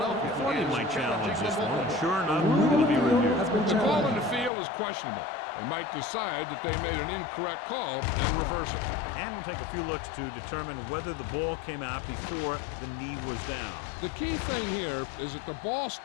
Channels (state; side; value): drops out; right; at 4.5 s